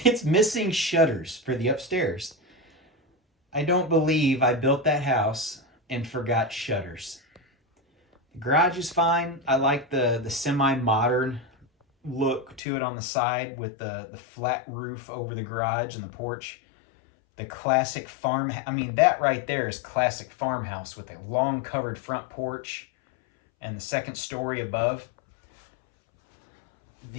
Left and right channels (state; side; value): drops out; right; at 12.6 s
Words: missing shutters for the upstairs. I don't believe I built that house and forgot shutters. The garage is fine. I like the semi-modern look to it on the side with the flat roof over the garage and the porch. The classic farm, I mean, that right there is classic farmhouse with a long covered front porch and the second story above.